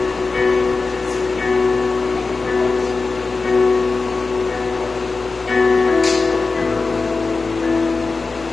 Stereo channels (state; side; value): quieter; right; 4.0 dB